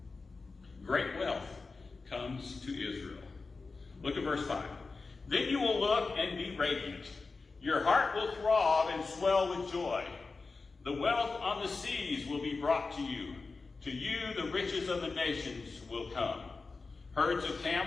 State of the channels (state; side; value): quieter; right; 4.1 dB